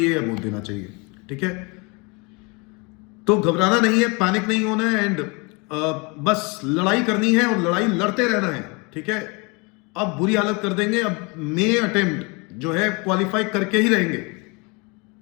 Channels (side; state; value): right; quieter; 29.2 dB